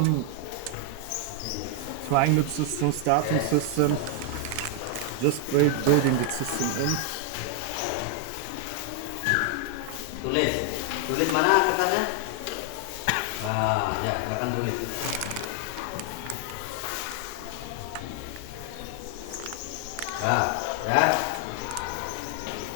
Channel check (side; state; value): both; different; correlation 0.00